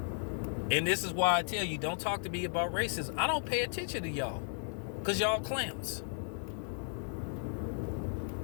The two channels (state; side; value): silent; right; digital silence